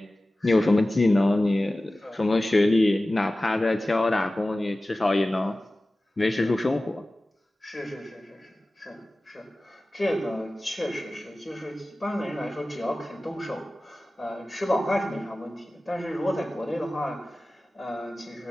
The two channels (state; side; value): normal; both; correlation 0.96